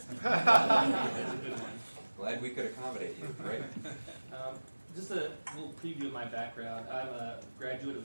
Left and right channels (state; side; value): inverted; both; correlation -1.00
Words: a good one. Glad we could accommodate you, right? Just a little preview of my background. I'm a graduate